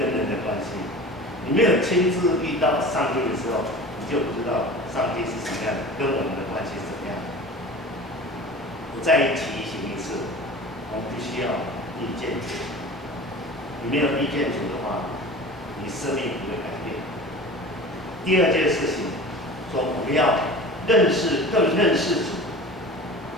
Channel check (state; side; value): normal; both; correlation 0.37